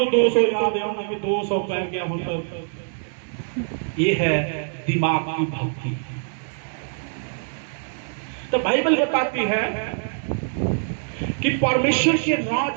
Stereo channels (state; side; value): silent; left; 63 dB below the other